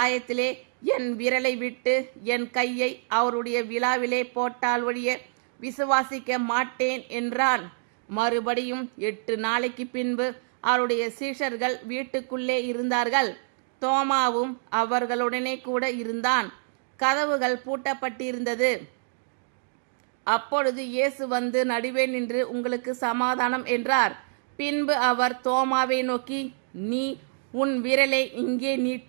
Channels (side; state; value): left; silent; digital silence